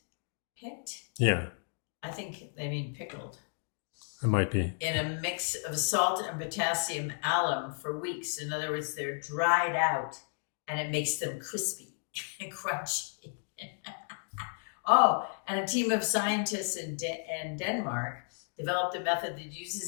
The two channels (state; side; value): silent; right; 56 dB below the other